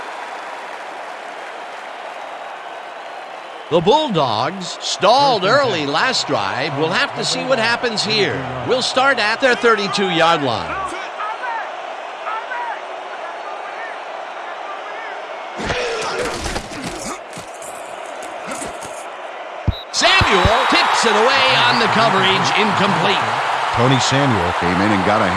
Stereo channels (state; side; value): identical; both; correlation 1.00